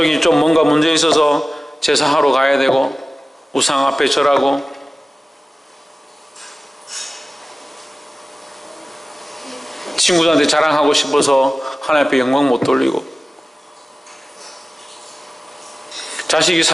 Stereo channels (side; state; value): both; normal; correlation 0.97